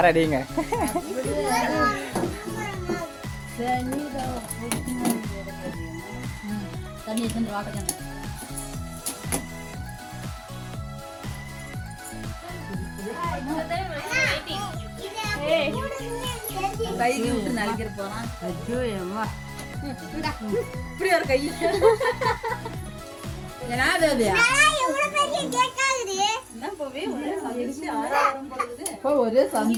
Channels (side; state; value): both; identical; correlation 1.00